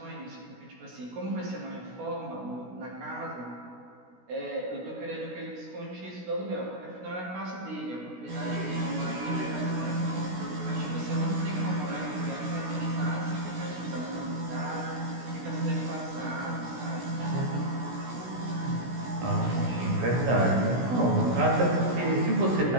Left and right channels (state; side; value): late; left; 16 ms